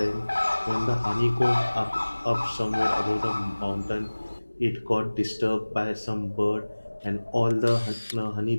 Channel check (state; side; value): inverted; both; correlation -1.00